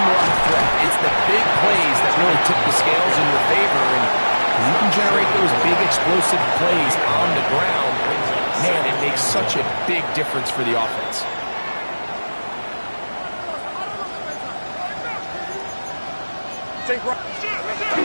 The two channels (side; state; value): both; inverted; correlation -1.00